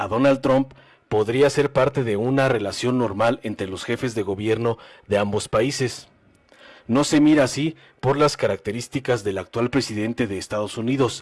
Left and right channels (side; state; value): both; identical; correlation 1.00